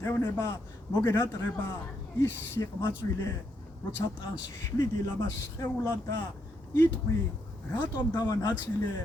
მოგენატრება ის სიყმაწვილე როცა ტანს შლიდი ლამას სხეულად და იტყვი რატომ დავანაწილე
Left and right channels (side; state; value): both; normal; correlation 0.78